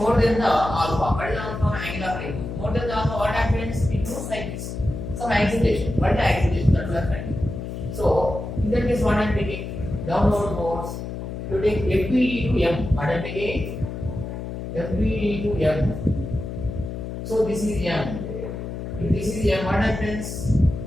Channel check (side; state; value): left; noise; hum, 7 dB below the sound